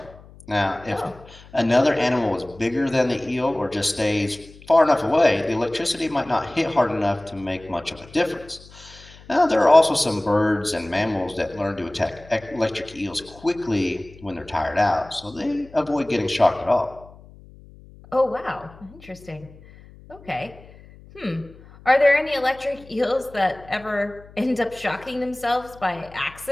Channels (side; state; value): left; noise; hum, 22 dB below the sound